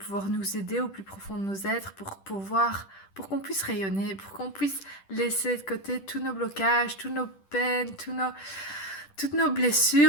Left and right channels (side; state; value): right; late; 10 ms